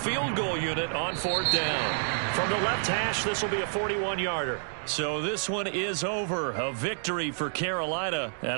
goal unit on 4th down. From the left hash, this will be a 41-yarder. So this one is over. A victory for Carolina.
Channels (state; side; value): silent; left; digital silence